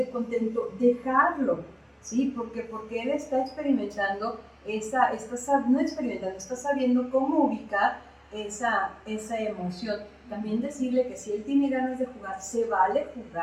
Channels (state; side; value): identical; both; correlation 1.00